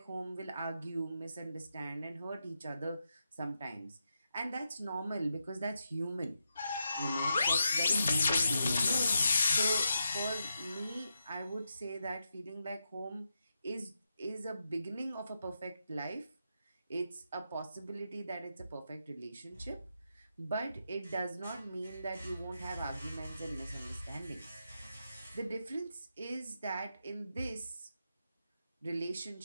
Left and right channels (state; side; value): inverted; both; correlation -0.85